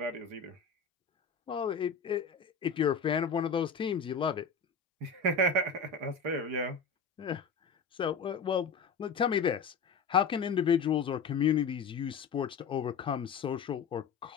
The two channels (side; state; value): right; quieter; 5.3 dB